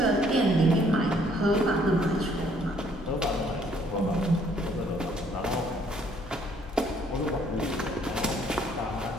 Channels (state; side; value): normal; both; correlation 0.64